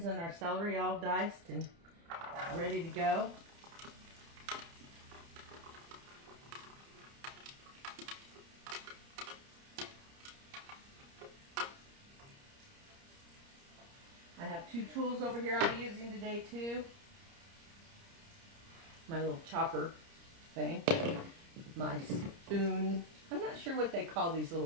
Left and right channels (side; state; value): left; late; 30 ms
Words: and our celery all diced and ready to go. I have two tools over here I'll be using today too. My little chopper thing. My spoon. I'm not sure what they call these